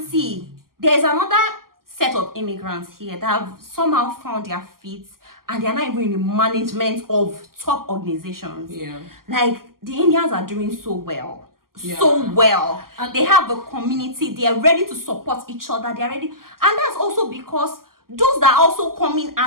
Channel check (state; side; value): late; left; 0.92 ms